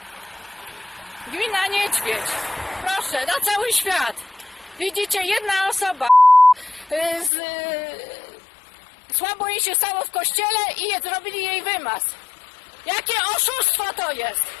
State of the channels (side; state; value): right; drops out; at 7.3 s